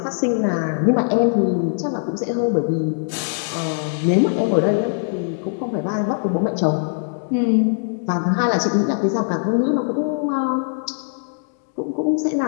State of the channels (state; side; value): silent; right; digital silence